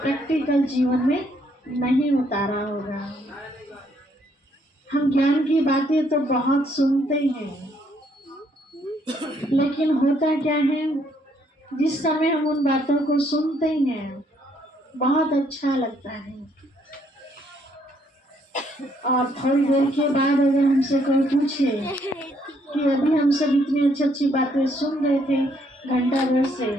जीवन में नहीं उतारा होगा। हम ज्ञान की बातें तो बहुत सुनते हैं, लेकिन होता क्या है, जिस समय हम उन बातों को सुनते हैं बहुत अच्छा लगता है, और थोड़ी देर के बाद अगर हमसे कोई पूछे कि अभी हम सब इतनी अच्छी अच्छी बातें सुन रहे थे घंटा भर से,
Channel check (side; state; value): both; normal; correlation 0.69